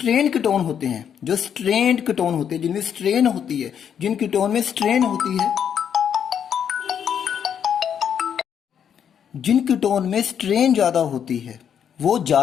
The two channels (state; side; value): quieter; right; 8.4 dB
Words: कीटोन होते हैं, जो स्ट्रेन्ड कीटोन होते हैं, जिनमें स्ट्रेन होती है, जिन कीटोन में स्ट्रेन होती है, जिन कीटोन में स्ट्रेन ज़्यादा होती है वो